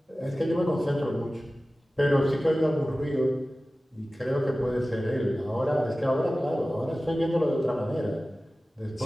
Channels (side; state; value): both; normal; correlation 0.96